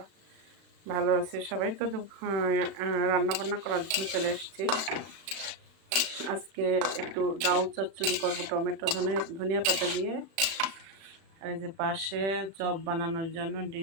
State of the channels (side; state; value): left; late; 36 ms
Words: ভালো আছি সবাই। তো রান্না বান্না করার জন্য চলে এসেছি। আজকে একটু ডাউ চচ্চড়ি করবো টমেটো ধনিয়া পাতা দিয়ে। আর এই যে পাশে চপ বানানোর জন্য